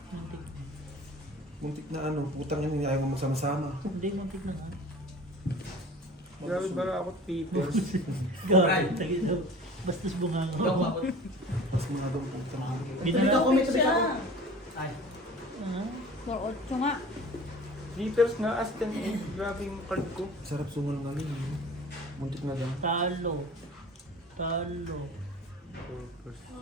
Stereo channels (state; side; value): normal; both; correlation 0.42